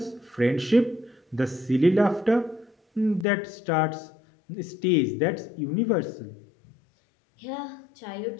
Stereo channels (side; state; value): right; drops out; at 3.2 s